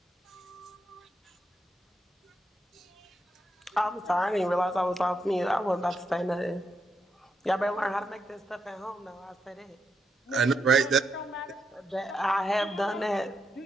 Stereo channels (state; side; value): normal; both; correlation 0.82